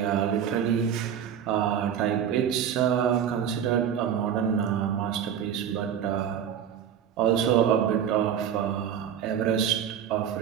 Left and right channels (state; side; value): quieter; left; 8.9 dB